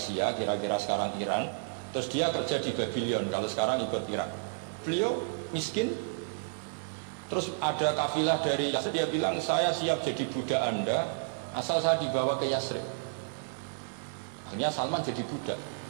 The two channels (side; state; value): left; silent; digital silence